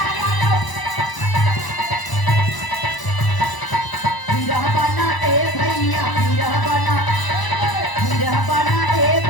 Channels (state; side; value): late; right; 1.0 ms